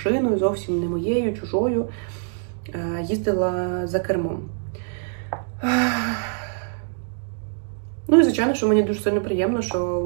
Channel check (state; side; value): silent; left; 63 dB below the other